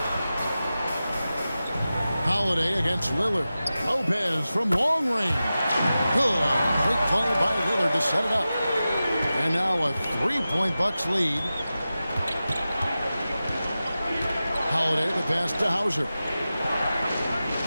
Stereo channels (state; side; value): inverted; both; correlation -0.94